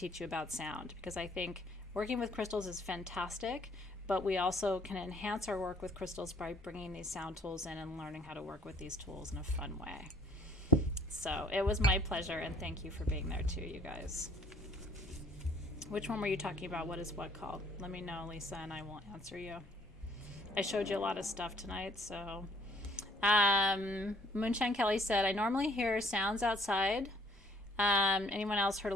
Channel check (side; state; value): both; normal; correlation 0.60